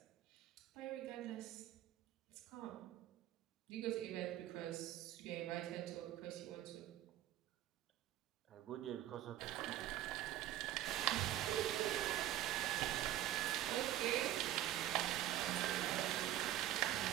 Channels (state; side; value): quieter; left; 13.3 dB